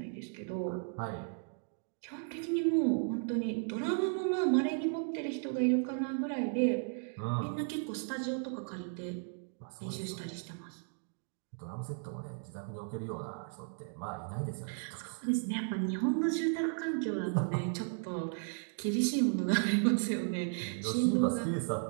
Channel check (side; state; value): left; silent; 54 dB below the other